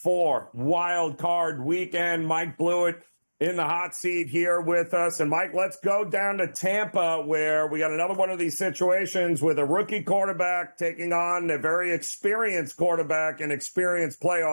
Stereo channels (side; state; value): both; inverted; correlation -1.00